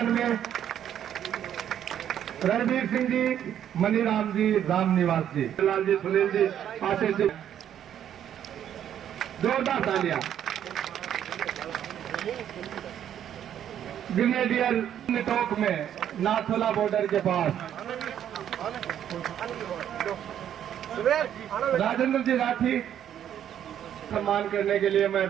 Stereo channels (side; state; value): left; quieter; 10.1 dB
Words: में रणवीर सिंह जी, मनीराम जी, रामनिवास जी, लाल जी, सुनील जी, आशीष जी, जोरदार तालियां। ग्रेनेडियर टोक में नाथोला बॉर्डर के पास राजेंद्र जी राठी सम्मान करने के लिए मैं